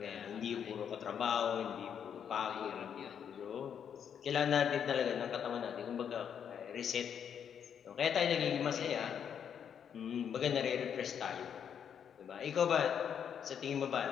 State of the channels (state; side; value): quieter; right; 8.1 dB